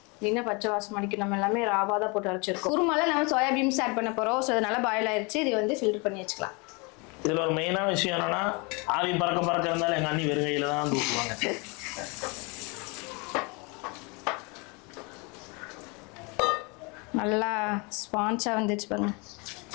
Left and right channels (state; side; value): quieter; right; 30.1 dB